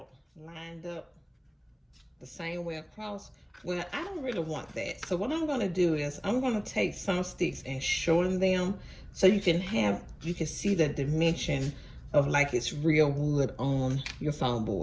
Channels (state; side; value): identical; both; correlation 1.00